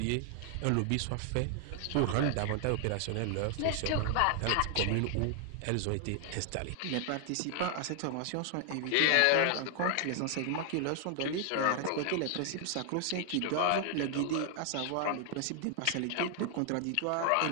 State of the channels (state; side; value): different; both; correlation 0.00